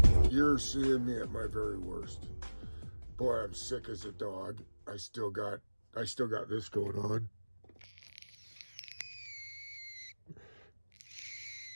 You're seeing me at my very worst. Boy, I'm sick as a dog. I still got this going on.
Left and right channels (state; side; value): inverted; both; correlation -1.00